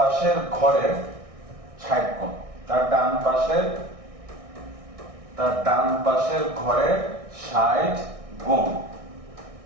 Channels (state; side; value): late; left; 1.6 ms